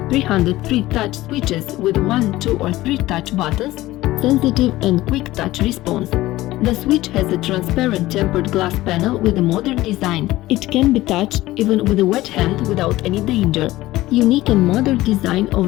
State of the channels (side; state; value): right; quieter; 17.0 dB